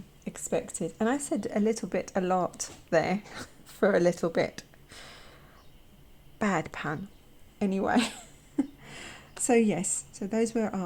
expected. And I said a little bit a lot there for a little bit. Bad pun. Anyway, so yes, so those were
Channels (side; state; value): both; identical; correlation 1.00